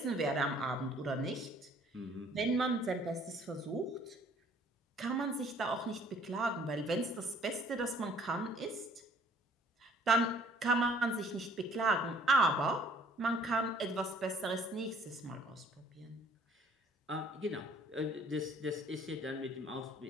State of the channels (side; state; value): both; normal; correlation 0.58